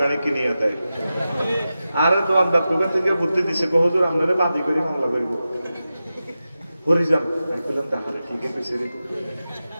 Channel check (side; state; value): both; inverted; correlation -0.93